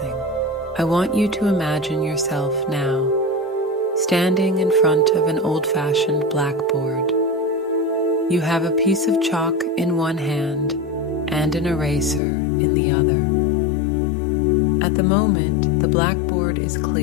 I want you to imagine yourself now standing in front of an old-fashioned blackboard. You have a piece of chalk in one hand and an eraser in the other. At the moment, the blackboard is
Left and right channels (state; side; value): drops out; right; at 12.2 s